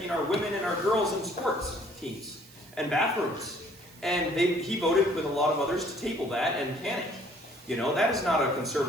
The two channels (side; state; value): right; noise; hiss, 23 dB below the sound